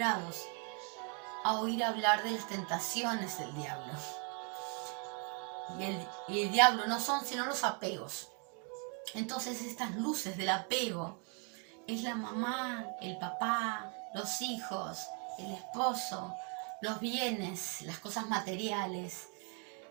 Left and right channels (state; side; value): quieter; left; 37.5 dB